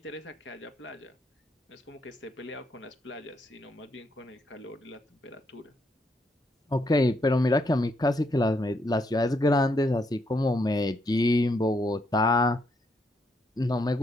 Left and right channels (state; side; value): normal; both; correlation 0.76